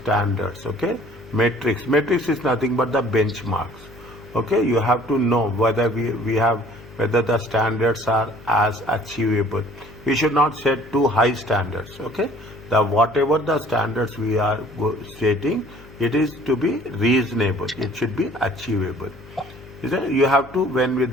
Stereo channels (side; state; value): left; noise; hum, 20 dB below the sound